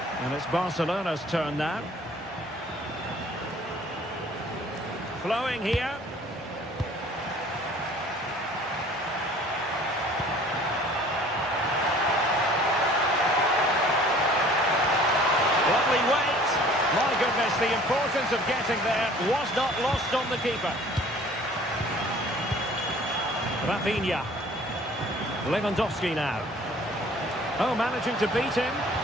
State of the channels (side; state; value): both; normal; correlation 0.51